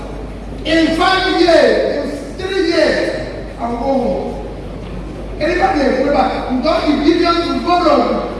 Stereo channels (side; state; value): both; identical; correlation 1.00